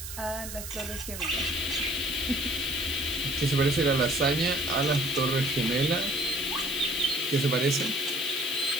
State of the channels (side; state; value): right; noise; hiss, 9 dB below the sound